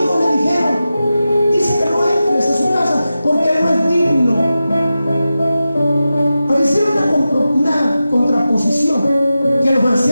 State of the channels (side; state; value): both; inverted; correlation -0.93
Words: le dijeron, dice que no entres a su casa porque él no es digno. Pero hicieron una contraposición, que los